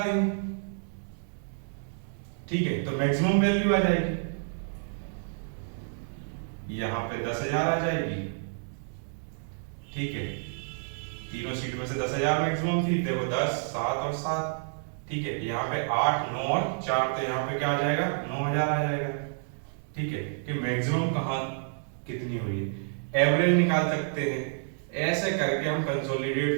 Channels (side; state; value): left; silent; digital silence